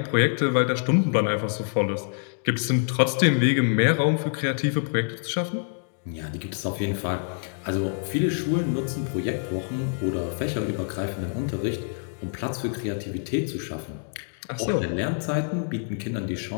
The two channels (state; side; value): silent; right; 61 dB below the other